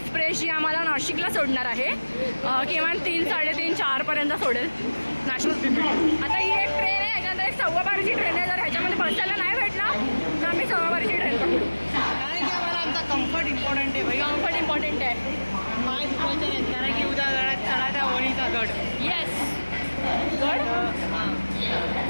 जी आम्हाला नाशिकला सोडणार आहे. किमान 3, 3:30, 4 पर्यंत सोडेल नाशिक. आता ही एक ट्रेन आहे, याच्यानंतर एक 12:15ची ट्रेन आहे. जर ह्याच्यामध्ये बसायला नाही भेटला तर आम्ही 12:15ची ट्रेन पकडू. कारण की आम्हाला आमचा कम्फर्ट इम्पॉर्टंट आहे. भाई कम्फर्ट इम्पॉर्टंट आहे. पाय दुखायचे नाहीत, कारण की उद्या गडात चढायचा वणीचा गड. येस, गड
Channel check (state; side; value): inverted; both; correlation -1.00